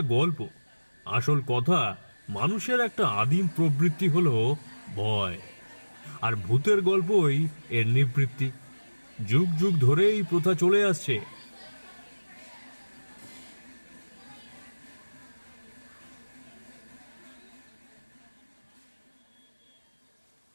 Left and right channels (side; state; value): both; inverted; correlation -1.00